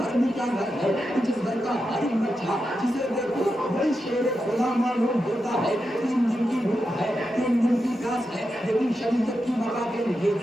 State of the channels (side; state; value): both; normal; correlation 0.88